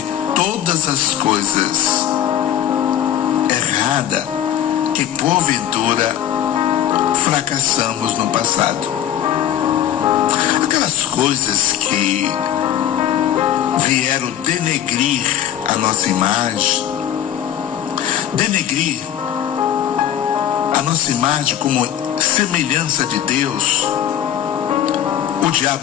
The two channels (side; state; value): right; quieter; 10.7 dB